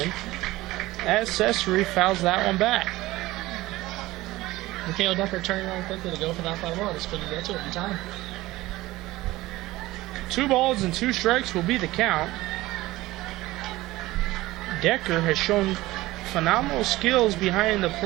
as Cesare fouls that one back. Michaela Decker turning around quickly to go for that fly ball. Just couldn't get to it in time. 2 balls and 2 strikes will be the count. Decker has shown phenomenal skills behind the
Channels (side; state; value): left; quieter; 18.1 dB